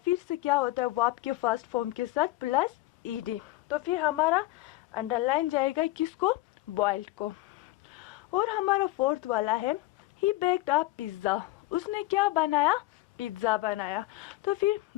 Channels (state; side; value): quieter; right; 18.5 dB